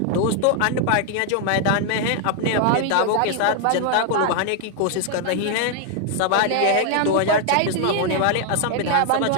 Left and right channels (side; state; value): both; different; correlation 0.00